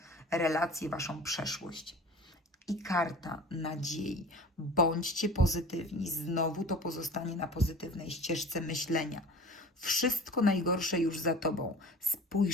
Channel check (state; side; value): normal; both; correlation 0.41